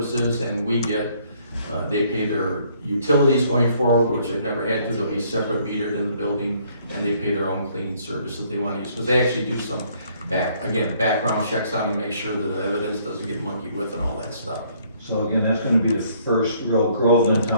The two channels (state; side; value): inverted; both; correlation -0.64